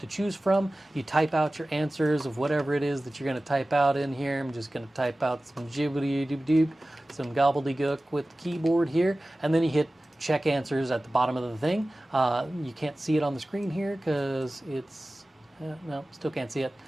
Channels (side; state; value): both; normal; correlation 0.97